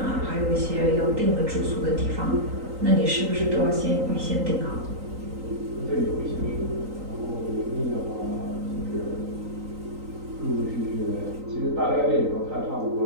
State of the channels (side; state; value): left; late; 3.9 ms